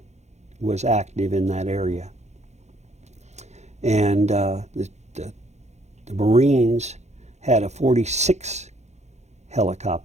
was active in that area. And the Marines had a 46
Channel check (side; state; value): left; late; 0.33 ms